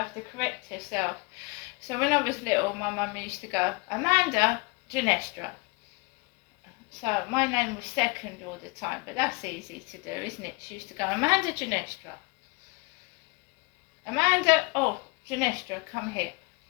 to correct herself. So when I was little, my mum used to go, "Amanda Ginestra." So my name was second all the time, but that's easy to do, isn't it? She used to go, "Amanda Ginestra. Amanda, Ginestra, come here."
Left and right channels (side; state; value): right; quieter; 27.9 dB